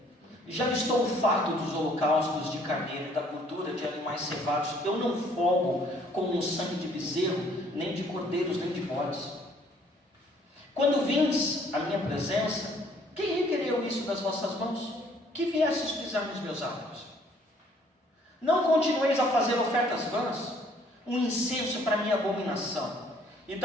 Já estou farto dos holocaustos de carneiro e da gordura de animais cevados. Eu não folgo com o sangue de bezerro, nem de cordeiros, nem de bodes. Quando vindes à minha presença, quem requereu isso das vossas mãos? Que viesses pisar nos meus átrios? Não continueis a fazer ofertas vãs, um incenso para minha abominação, e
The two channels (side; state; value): both; normal; correlation 0.61